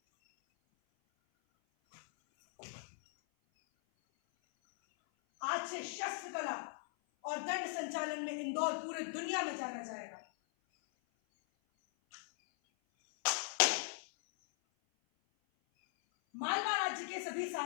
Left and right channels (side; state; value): right; silent; 52 dB below the other